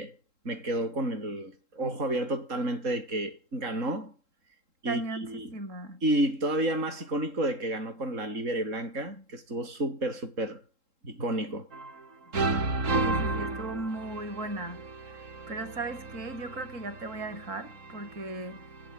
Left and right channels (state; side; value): late; left; 3.7 ms